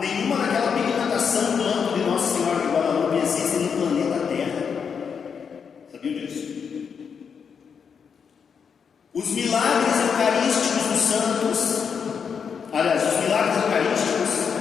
daquela pigmentação do manto de Nossa Senhora de Guadalupe existe no planeta Terra. Sabiam disso? Os milagres eucarísticos dos santos, aliás, os milagres eucarísticos,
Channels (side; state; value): right; quieter; 6.6 dB